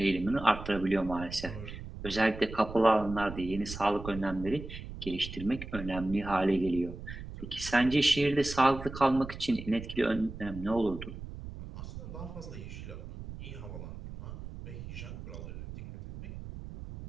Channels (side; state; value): right; noise; rumble, 11 dB below the sound